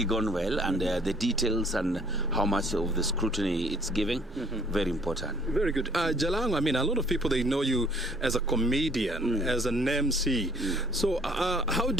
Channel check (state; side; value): normal; both; correlation 0.59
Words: gone well, and the details and how much of the scrutiny it's giving, very important. Very good. Jalango, I mean, a lot of people, they know you as a comedian, as an MC. So how